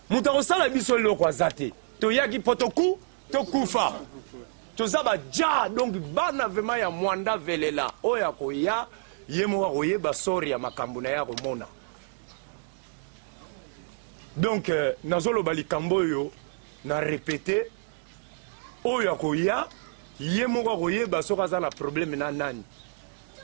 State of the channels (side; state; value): left; silent; digital silence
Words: Muta osala biso loko azate. To yaki potoku to kufa. To zaba ja donc bana vraiment ya mwanda velela. Oya ko ya yemo wa yeba sori ya makambo na ya komona. Donc nazolo bali kambo yo na répéter oya ko ya yemoko koyeba soka za na problème na nani